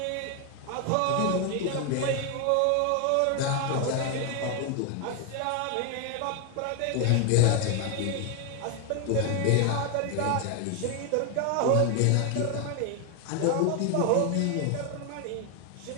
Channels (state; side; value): different; both; correlation 0.01